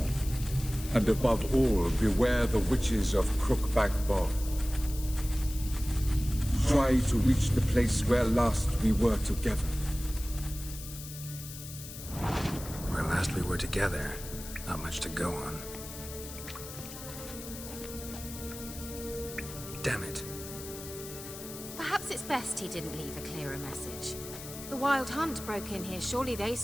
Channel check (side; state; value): left; noise; hiss, 12 dB below the sound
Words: And above all, beware the witches of Crookback Bog. Try to reach the place where last we were together. Where last we were together, not much to go on. Damn it. Perhaps it's best he didn't leave a clearer message. The Wild Hunt broke in here. Surely they